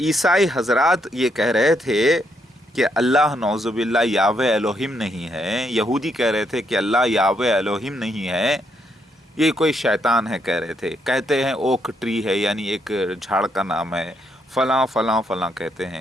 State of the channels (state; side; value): normal; both; correlation 0.76